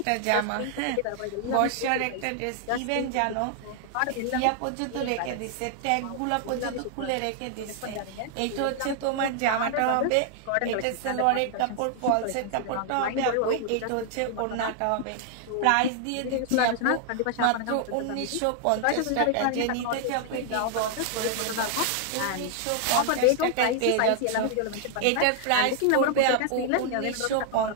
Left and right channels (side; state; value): both; different; correlation 0.00